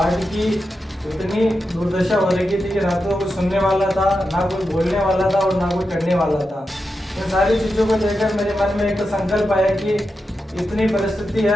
की इतनी दुर्दशा हो रही थी कि ना तो कोई सुनने वाला था, ना कोई बोलने वाला था और ना कोई करने वाला था। इन सारी चीज़ों को लेकर मेरे मन में एक तो संकल्प आया कि इतनी परिस्थिति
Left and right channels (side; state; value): both; normal; correlation 0.89